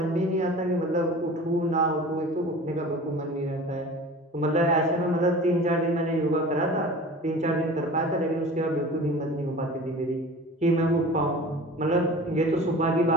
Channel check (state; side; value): normal; both; correlation 0.39